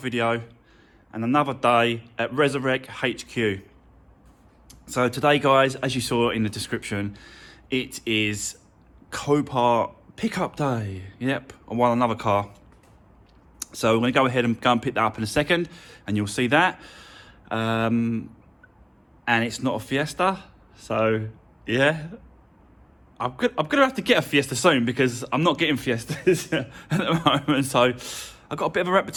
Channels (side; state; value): both; identical; correlation 1.00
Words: and another day at Resurrect HQ. So today, guys, as you saw in the description, it is Copart pickup day. Yep, I won another car. So we're going to go ahead and pick that up in a second, and you'll see that. And it's not a Fiesta, so yeah. I'm gonna have to get a Fiesta soon because I'm not getting Fiestas at the moment. So I've got a bit of a